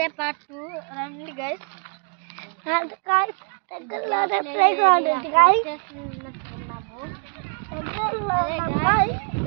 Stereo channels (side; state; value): left; quieter; 35.6 dB